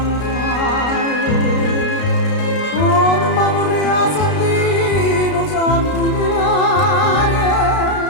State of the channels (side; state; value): right; late; 33 ms